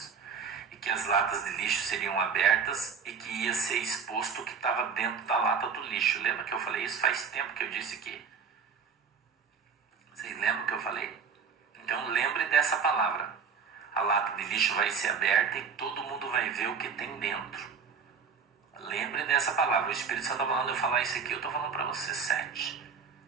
E que as latas de lixo seriam abertas e que ia ser exposto o que estava dentro da lata do lixo. Lembra que eu falei isso? Faz tempo que eu disse aqui. Vocês lembram que eu falei? Então lembre dessa palavra. A lata de lixo vai ser aberta e todo mundo vai ver o que tem dentro. Lembre dessa palavra. O Espírito Santo está falando eu falar isso aqui, eu estou falando para você. 7.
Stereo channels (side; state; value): left; quieter; 5.9 dB